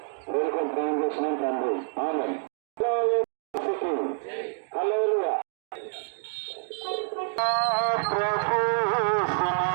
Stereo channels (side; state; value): left; silent; digital silence